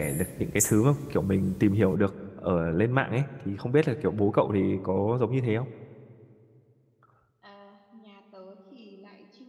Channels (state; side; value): identical; both; correlation 1.00